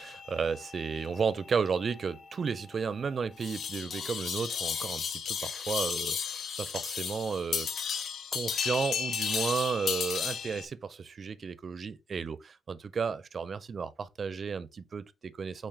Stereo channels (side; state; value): both; normal; correlation 0.79